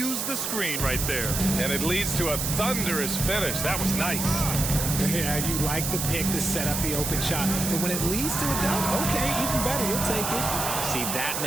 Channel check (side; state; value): right; noise; hiss, 2 dB below the sound